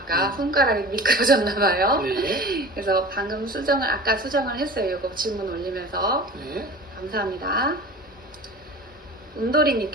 손가락이 미끄러졌나봐요. 네. 그래서 방금 아까 수정을 했어요. 이거 질문 올리면서. 네. 감사합니다.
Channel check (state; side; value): normal; both; correlation 0.37